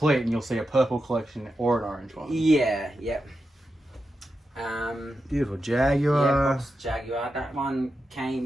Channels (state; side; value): normal; both; correlation 0.89